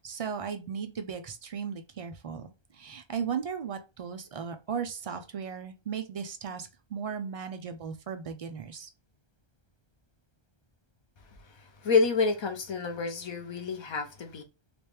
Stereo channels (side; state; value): right; late; 1.3 ms